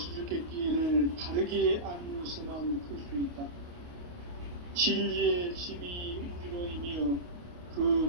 바르게 알면서만 풀 수 있다. 진리의 핵심이 우주론이며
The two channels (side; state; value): left; late; 28 ms